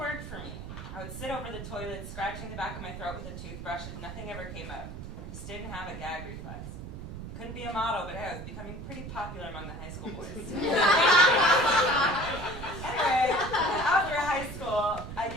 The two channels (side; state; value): right; noise; rumble, 9 dB below the sound